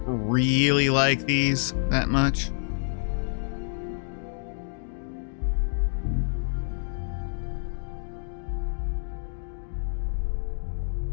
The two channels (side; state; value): right; silent; digital silence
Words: really like these that much.